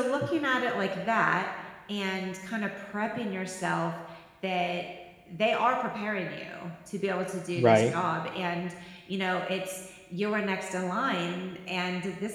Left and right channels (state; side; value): identical; both; correlation 1.00